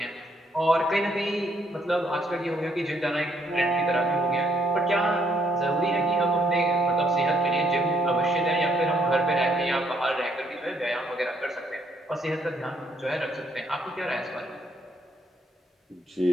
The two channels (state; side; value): normal; both; correlation 0.71